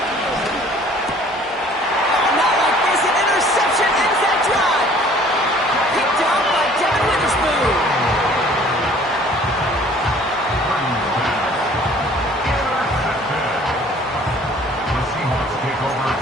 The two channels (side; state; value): both; normal; correlation 0.53